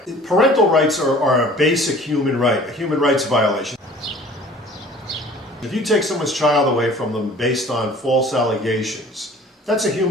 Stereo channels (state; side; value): normal; both; correlation 0.48